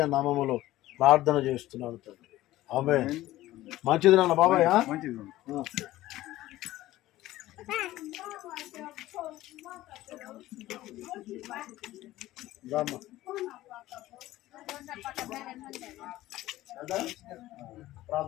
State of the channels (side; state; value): right; quieter; 16.0 dB